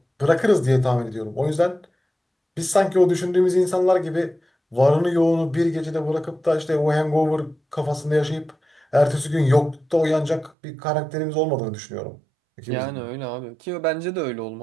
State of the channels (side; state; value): left; drops out; at 10.6 s